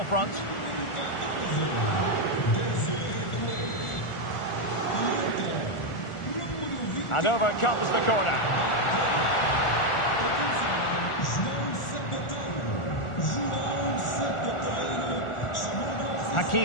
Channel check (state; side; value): late; right; 1.4 ms